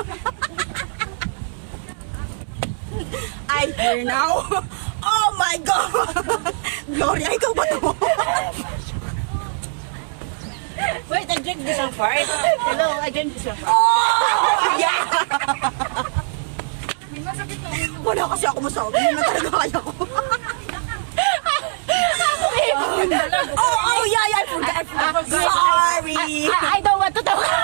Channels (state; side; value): silent; left; digital silence